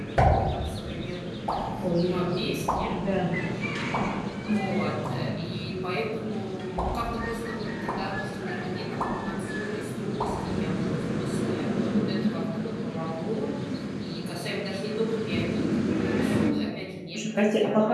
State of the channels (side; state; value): both; identical; correlation 1.00